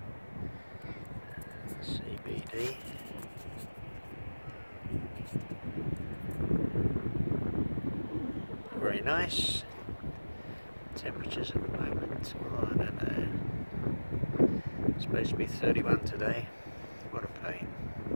CBD. Very nice. Temperatures at the moment, oh, I don't know. It's supposed to be 31 today. What a pain.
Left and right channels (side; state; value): both; inverted; correlation -1.00